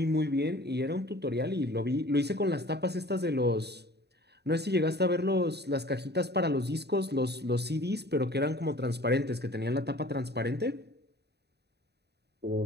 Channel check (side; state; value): left; late; 0.48 ms